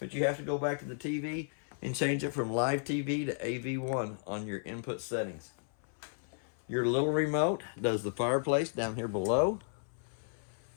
you have to go back to the TV and change it from live TV to AV1 on your input settings. Your little remote does the fireplace down here below.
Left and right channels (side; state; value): right; silent; 55 dB below the other